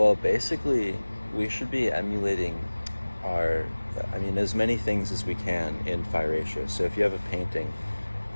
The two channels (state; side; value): inverted; both; correlation -1.00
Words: basically, we should be emulating as many things as we can in phi ratio. So if you have a painting,